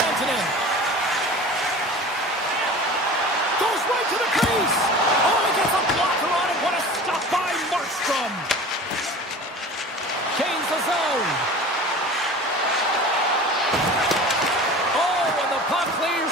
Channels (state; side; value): normal; both; correlation 0.38